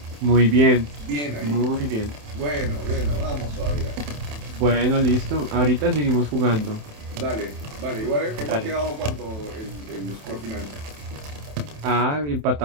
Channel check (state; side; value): late; left; 27 ms